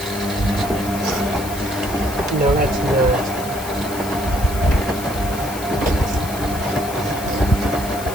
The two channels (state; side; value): noise; left; hiss, 12 dB below the sound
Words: No, that's nerd.